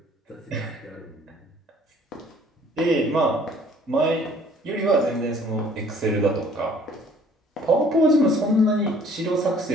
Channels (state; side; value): normal; both; correlation 0.56